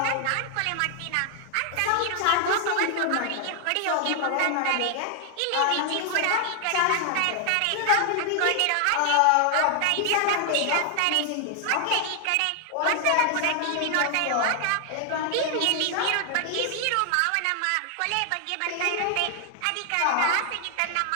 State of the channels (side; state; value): both; different; correlation 0.00